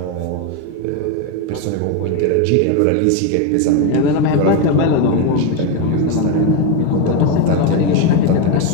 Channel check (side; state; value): both; different; correlation 0.03